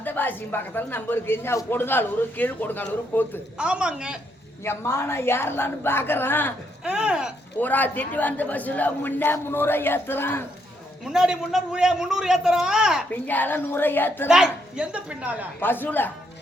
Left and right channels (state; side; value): normal; both; correlation 0.75